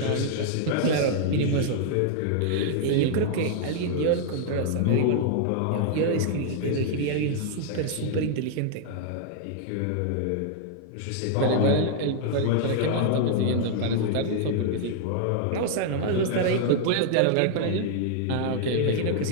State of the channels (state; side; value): different; both; correlation -0.01